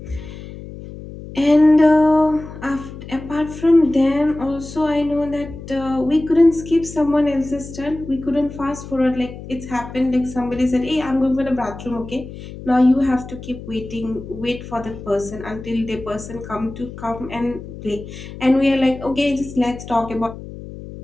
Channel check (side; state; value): left; noise; hum, 13 dB below the sound